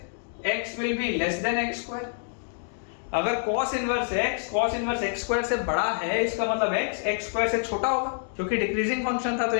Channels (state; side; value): silent; right; digital silence